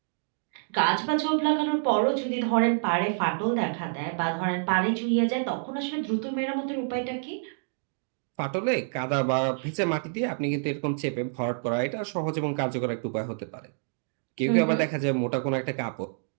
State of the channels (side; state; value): left; silent; digital silence